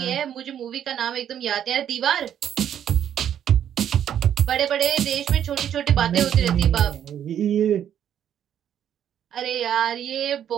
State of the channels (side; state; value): left; quieter; 9.8 dB